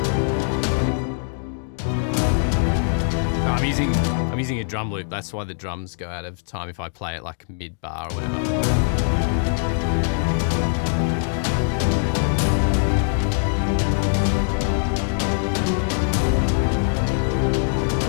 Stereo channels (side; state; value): right; silent; digital silence